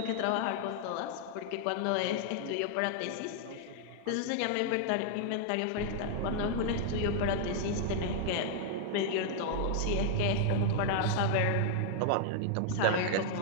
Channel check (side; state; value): both; different; correlation 0.00